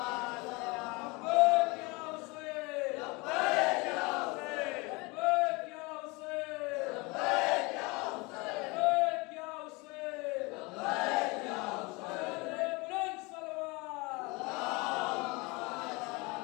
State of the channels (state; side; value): quieter; right; 26.0 dB